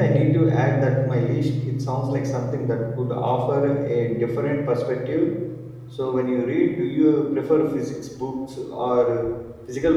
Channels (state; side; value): identical; both; correlation 1.00